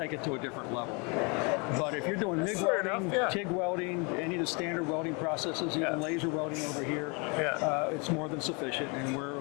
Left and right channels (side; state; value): right; quieter; 31.7 dB